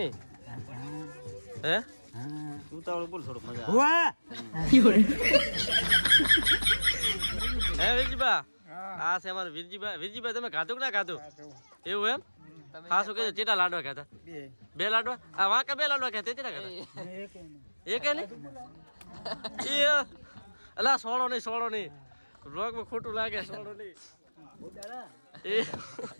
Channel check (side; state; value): both; inverted; correlation -1.00